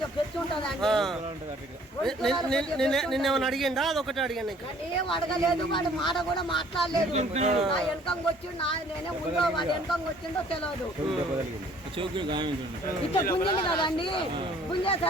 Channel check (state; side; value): normal; both; correlation 0.57